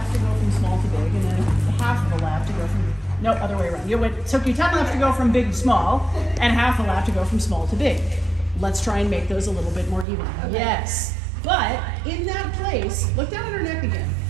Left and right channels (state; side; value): drops out; left; at 10.1 s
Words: to go from small to big, and then half of a lap to go from, no, other way around. It took you 10 laps to go from big to small, and half a lap to go from small to big. Let's try and make those a little bit more even. Okay. Yes, but in that place, look down at her neck again.